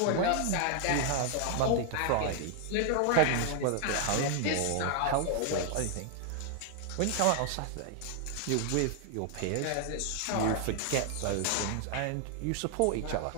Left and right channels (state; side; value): different; both; correlation 0.00